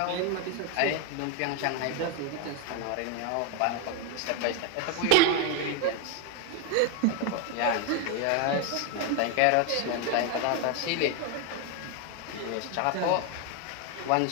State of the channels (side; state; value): both; different; correlation 0.01